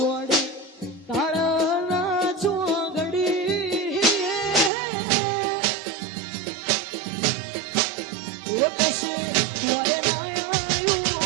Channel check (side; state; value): left; drops out; at 4.7 s